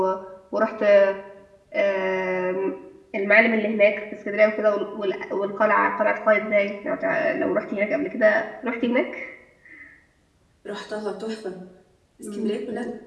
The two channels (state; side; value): identical; both; correlation 1.00